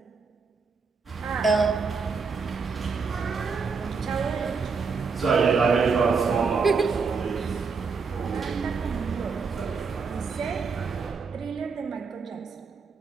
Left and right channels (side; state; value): left; quieter; 5.1 dB